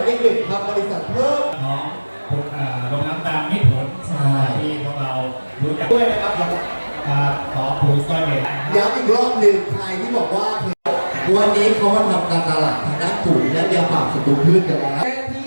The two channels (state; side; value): inverted; both; correlation -1.00